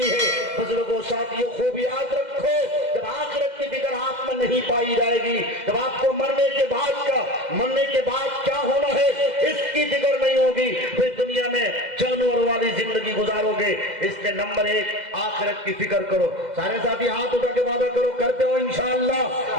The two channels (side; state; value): left; late; 2.0 ms